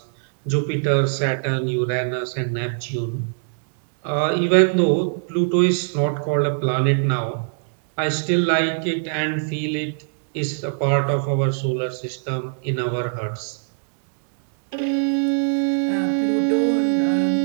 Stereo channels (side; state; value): left; silent; digital silence